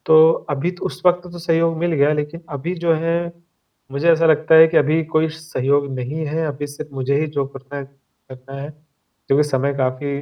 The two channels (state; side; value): identical; both; correlation 1.00